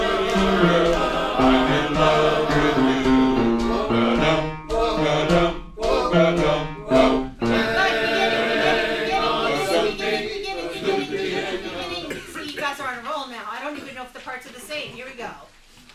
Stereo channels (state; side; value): identical; both; correlation 1.00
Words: See, you guys are on a roll now. I don't even know if the parts are the same. Here we go.